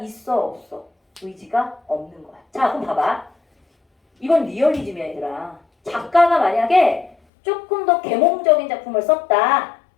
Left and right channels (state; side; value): drops out; right; at 7.2 s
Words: 없어? 의지가 없는 거야. 자, 그럼 봐봐. 이건 리얼리즘이야 얘들아. 작가가 만약에 조금 더 계몽적인 작품을 썼다.